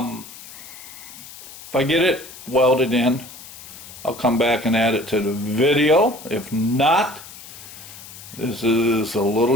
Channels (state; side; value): noise; left; hiss, 16 dB below the sound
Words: I get it welded in, I'll come back and add it to the video. If not, this is a